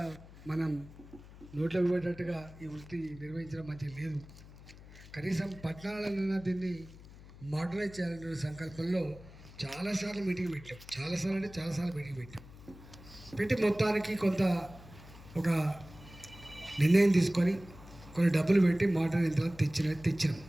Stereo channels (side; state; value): left; noise; hum, 19 dB below the sound